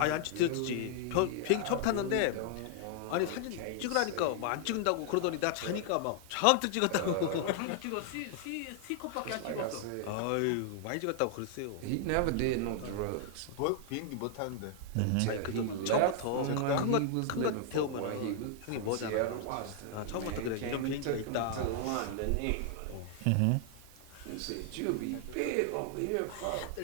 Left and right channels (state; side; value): different; both; correlation 0.00